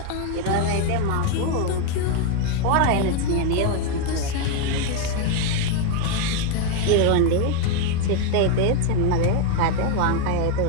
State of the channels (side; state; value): both; different; correlation 0.01